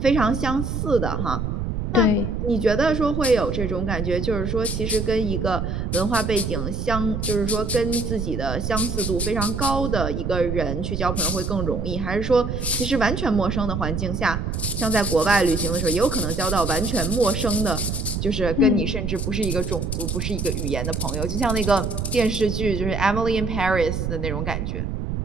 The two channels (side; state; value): right; noise; rumble, 3 dB below the sound